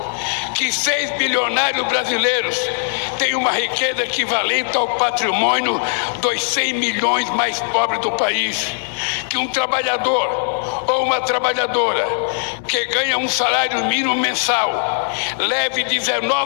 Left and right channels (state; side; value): silent; right; digital silence